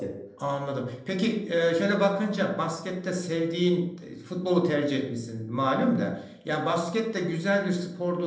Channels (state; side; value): identical; both; correlation 1.00